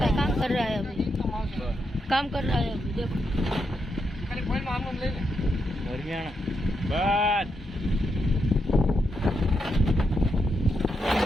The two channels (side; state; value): both; normal; correlation 0.82